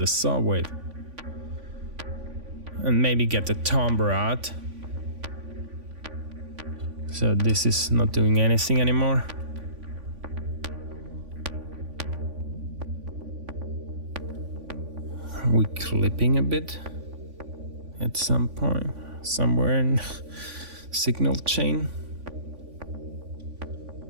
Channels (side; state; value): left; late; 3.5 ms